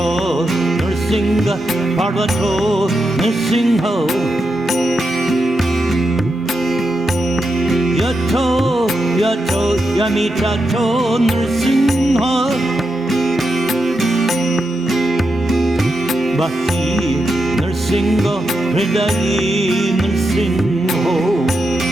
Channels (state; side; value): normal; both; correlation 0.86